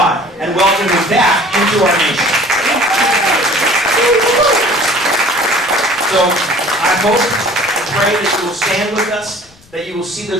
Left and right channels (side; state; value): left; noise; rumble, 29 dB below the sound